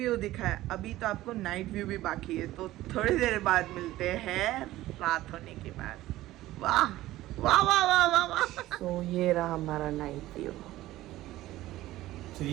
दिखा है, अभी तो आपको नाइट व्यू भी बाकी है। तो थोड़ी देर बाद मिलते हैं रात होने के बाद। वाह वाह वाह वाह वाह वाह। तो ये रहा हमारा नाइट व्यू। तो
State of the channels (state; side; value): quieter; left; 16.0 dB